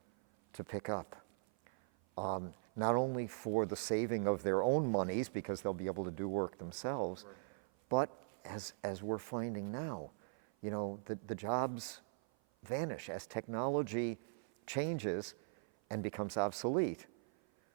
to pick up. Not only for the saving of their own monies, because they'll be able to do work themselves, Right. but as we're finding now, the jobs vanish as technology changes and becomes obsolete.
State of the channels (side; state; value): left; silent; 51 dB below the other